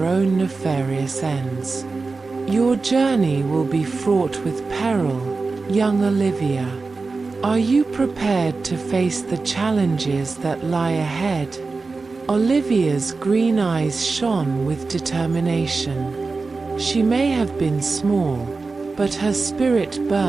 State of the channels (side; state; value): left; quieter; 4.0 dB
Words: own nefarious ends. Your journey will be fraught with peril, young Olivia. Are you prepared to face the challenges that lie ahead? Olivia's green eyes shone with determination. She may have been small, but her spirit